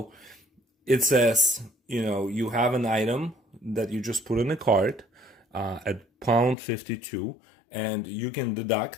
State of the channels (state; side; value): drops out; right; at 6.6 s